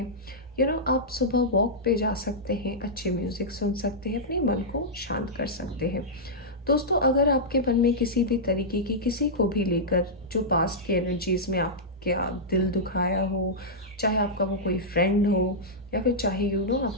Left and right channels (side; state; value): both; normal; correlation -0.10